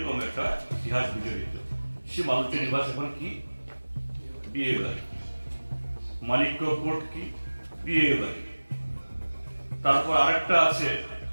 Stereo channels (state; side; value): inverted; both; correlation -1.00